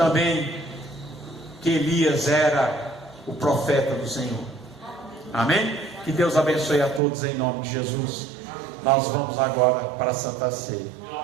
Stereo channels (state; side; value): drops out; left; at 7.0 s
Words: que Elias era o profeta do Senhor. Amém? Que Deus abençoe a todos em nome de Jesus. Nós vamos agora para a Santa Ceia.